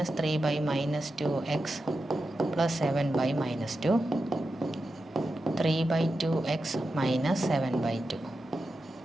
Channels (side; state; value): both; normal; correlation 0.90